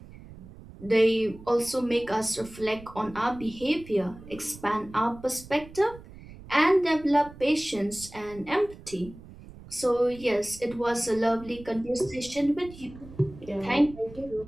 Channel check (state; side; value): noise; right; rumble, 18 dB below the sound